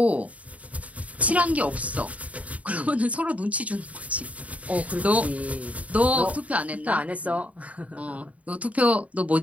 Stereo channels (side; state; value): left; late; 0.068 ms